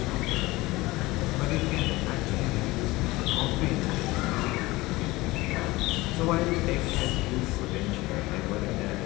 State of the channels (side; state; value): right; quieter; 20.3 dB